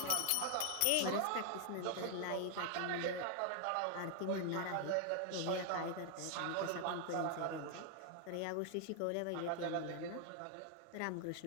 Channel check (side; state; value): both; different; correlation 0.00